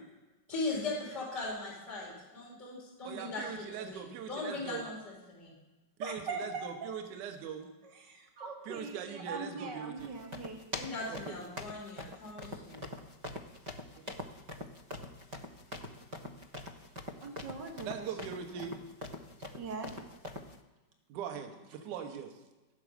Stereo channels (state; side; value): late; left; 5.2 ms